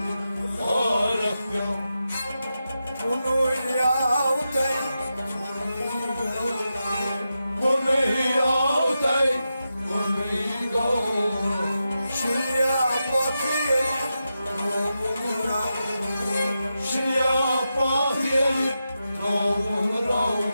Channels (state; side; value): inverted; both; correlation -0.89